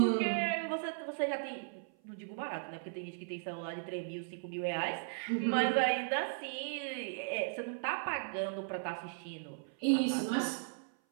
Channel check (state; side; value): silent; left; 53 dB below the other